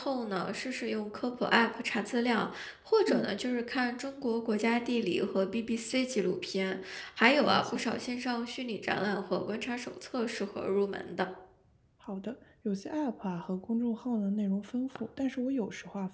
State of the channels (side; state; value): both; identical; correlation 1.00